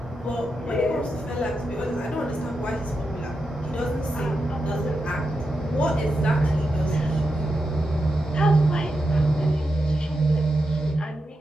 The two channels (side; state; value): both; normal; correlation 0.87